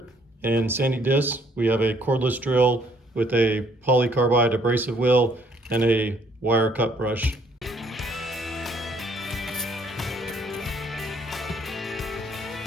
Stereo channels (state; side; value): normal; both; correlation 0.64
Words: and sanding disc. We have a cordless drill with a polycarbide abrasive wheel and a wire cut brush.